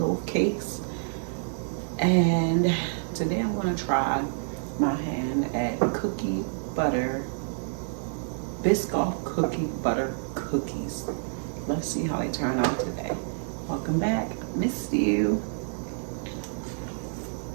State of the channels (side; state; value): left; silent; 59 dB below the other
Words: cakes. And today I'm going to try my hand at cookie butter, Biscoff cookie butter cookies. Let's see how they turn out today. Welcome back. Missed you.